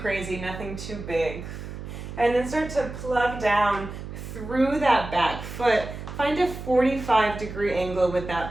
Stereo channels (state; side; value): noise; right; hum, 10 dB below the sound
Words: nothing too big. And then start to plug down through that back foot. Find a 45-degree angle with